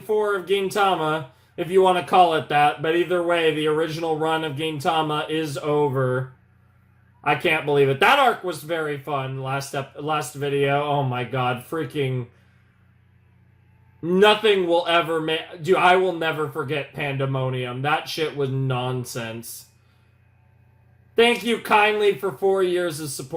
of Gintama. if you want to call it that. But either way, the original run of Gintama is over. I can't believe it. That arc was very fun. Last video. Oh my god, freaking. Nothing will ever make. Dude, I will never forget Pandemonium. That shit was nonsense. Thank you kindly for 4 years of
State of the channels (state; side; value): identical; both; correlation 1.00